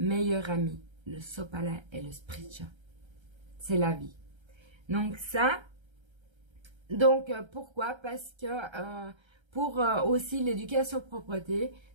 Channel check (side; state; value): left; late; 1.3 ms